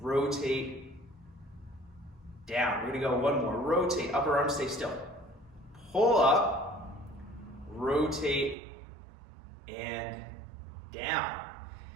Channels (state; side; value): drops out; left; at 8.6 s